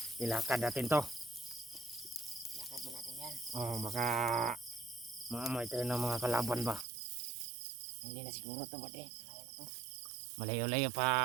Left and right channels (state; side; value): drops out; left; at 6.9 s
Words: Ilakad natin to. Lakad ba natin yan? Oh, baka maamoy tayo ng mga kalaban ba? Hindi na siguro to ba de? Malayo na to. Malayo-layo pa.